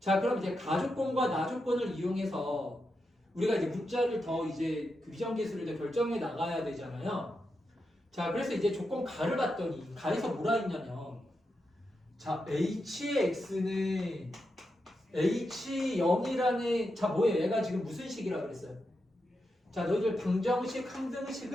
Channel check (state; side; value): normal; both; correlation 0.86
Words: 그럼 이제 가조건과 나조건을 이용해서 우리가 이제 문자를 더 이제 그 비정계수를 이제 결정해 나가야 되잖아요. 자, 그래서 이제 조건 가를 봤더니 가에서 뭐라 했냐면, 자, h의 x는 h0이라는 자 뭐예요? 얘가 지금 무슨 식이라 그랬어요? 자, 너희들 방정식,